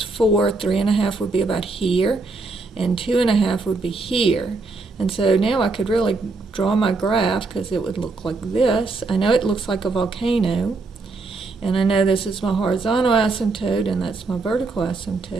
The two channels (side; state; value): left; quieter; 3.7 dB